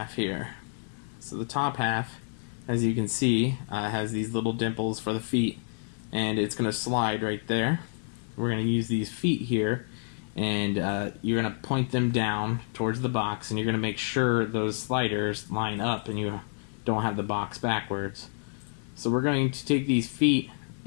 here. So the top half, as you can see, has these little dimples for the feet, and it's going to slide right there. We're going to use these feet here, and you're going to point them down towards the box, and you're going to make sure those sliders line up and you don't have the box backwards. So we're going to take these feet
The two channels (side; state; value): right; silent; 59 dB below the other